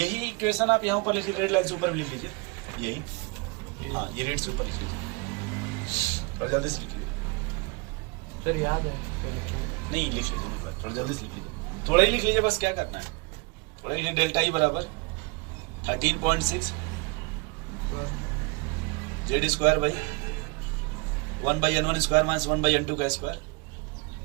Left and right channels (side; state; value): left; quieter; 28.7 dB